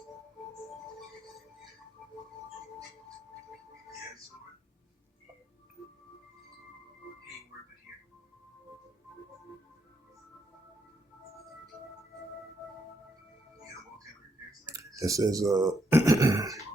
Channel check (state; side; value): normal; both; correlation 0.78